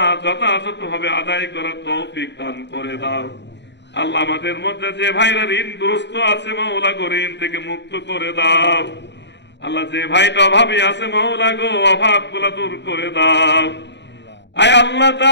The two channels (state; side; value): late; right; 0.51 ms